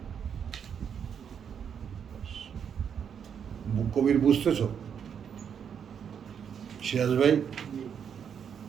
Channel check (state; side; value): quieter; left; 7.7 dB